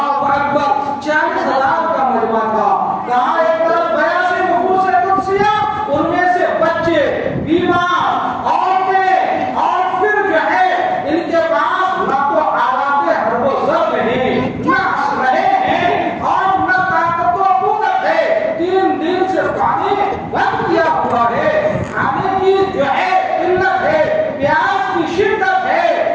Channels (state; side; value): identical; both; correlation 1.00